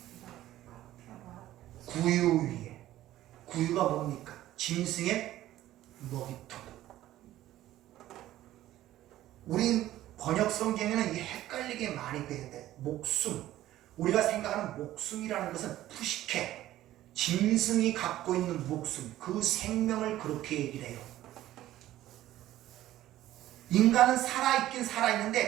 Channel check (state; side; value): quieter; left; 14.2 dB